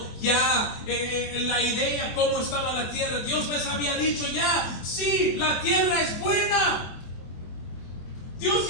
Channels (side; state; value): right; late; 24 ms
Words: ya la idea cómo estaba la tierra. Dios les había dicho ya, sí, la tierra es buena. Dios